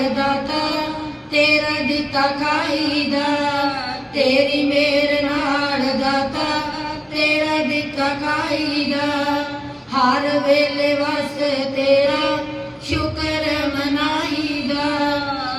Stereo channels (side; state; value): both; identical; correlation 1.00